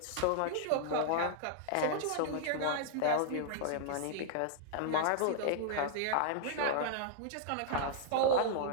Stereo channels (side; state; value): both; different; correlation -0.01